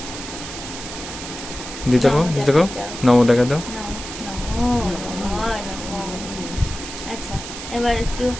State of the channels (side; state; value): right; noise; hiss, 10 dB below the sound